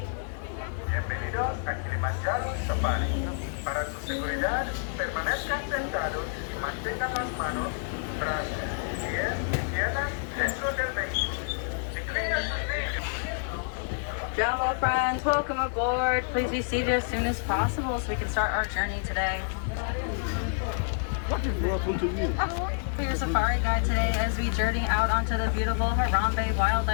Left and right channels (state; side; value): silent; right; digital silence